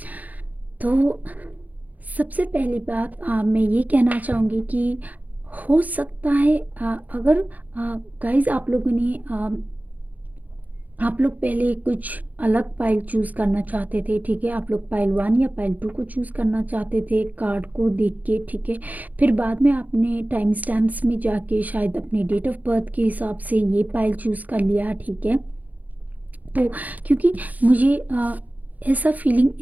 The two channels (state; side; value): late; left; 0.079 ms